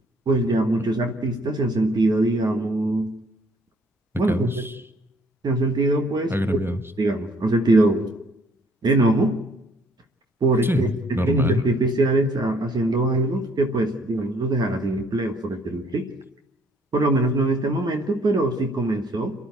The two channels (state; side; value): normal; both; correlation 0.62